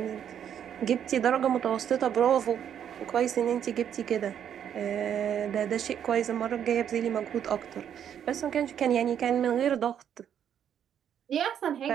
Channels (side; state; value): left; quieter; 9.1 dB